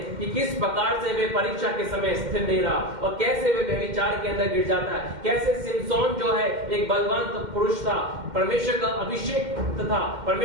कि किस प्रकार से वे परीक्षा के समय स्थिर नहीं रहा और कैसे वे व्यभिचार के अंदर गिर जाता है। कैसे सिमसोन जो है एक बलवान पुरुष था, परमेश्वर का अभिषेक था,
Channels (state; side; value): late; left; 2.1 ms